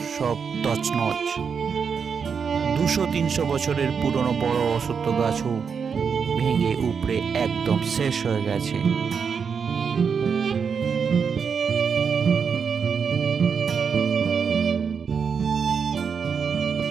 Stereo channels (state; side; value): quieter; left; 6.3 dB